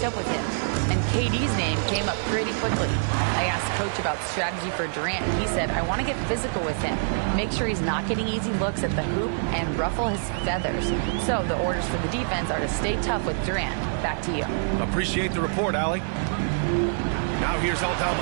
up with him, and KD's name came up pretty quickly. I asked Coach about strategy for Durant, and he said, I want to get physical with him, make sure he's not getting easy looks at the hoop, and ruffle his feathers. So the orders for the defense are to stay tough with Durant. Back to you. Appreciate the report, Allie. Now here's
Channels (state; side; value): silent; left; digital silence